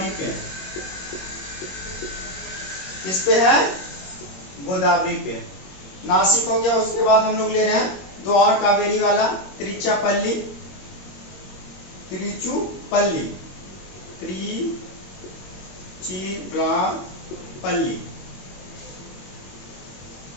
पे है। किस पे है? गोदावरी पे। नासिक हो गया। उसके बाद हम लोग ले रहे हैं दो और कावेरी वाला, त्रिचुपल्ली, त्रिचुपल्ली, त्रिचिरापल्ली।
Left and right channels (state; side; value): late; right; 21 ms